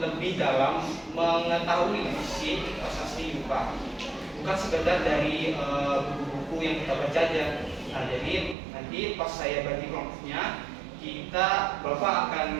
dalam mengetahui isi prasasti Yupa, bukan sekedar dari buku-buku yang kita baca aja. Nah, jadi nanti pas saya bagi kelompoknya, Bapak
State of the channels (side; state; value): left; drops out; at 8.6 s